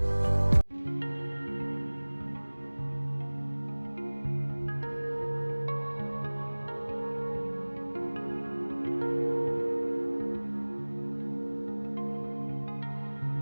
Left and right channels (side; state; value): both; inverted; correlation -1.00